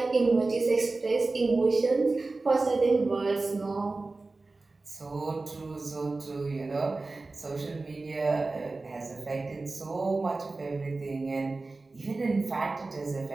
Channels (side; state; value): left; quieter; 3.5 dB